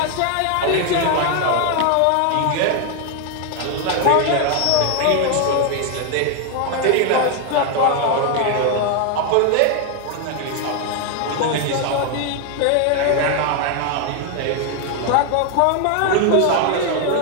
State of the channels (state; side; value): different; both; correlation 0.01